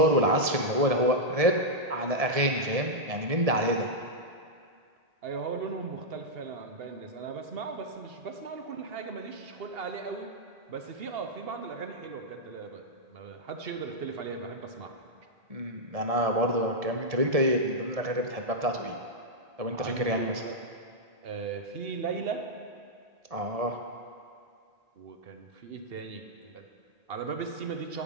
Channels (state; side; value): late; left; 1.7 ms